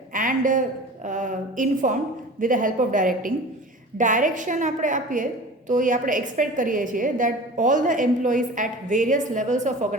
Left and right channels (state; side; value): normal; both; correlation 0.38